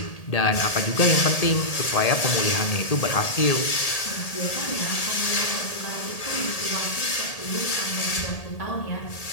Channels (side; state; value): right; late; 1.8 ms